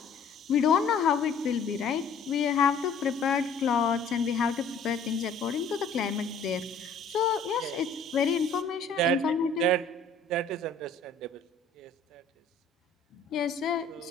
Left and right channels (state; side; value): quieter; right; 4.0 dB